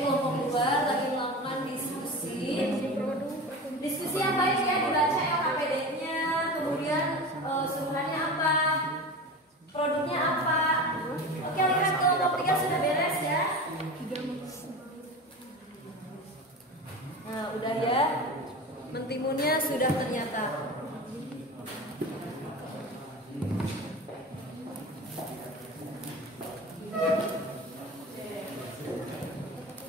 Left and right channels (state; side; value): normal; both; correlation 0.30